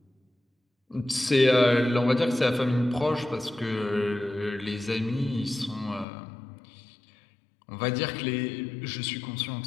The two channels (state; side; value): drops out; right; at 6.1 s